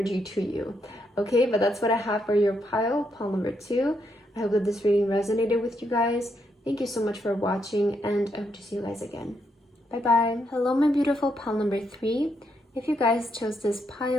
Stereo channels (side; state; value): both; normal; correlation 0.78